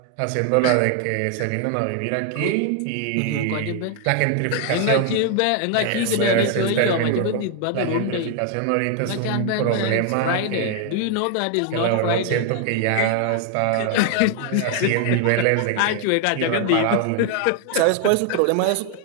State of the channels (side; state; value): both; different; correlation 0.00